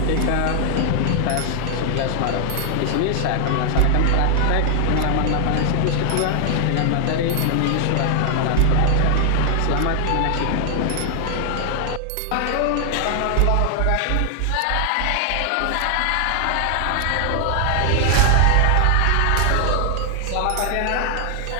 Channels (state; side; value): different; both; correlation 0.00